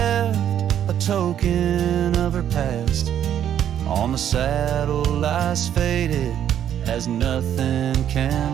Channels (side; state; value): left; quieter; 10.0 dB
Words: a token of her past, on the saddle lies faded as nothing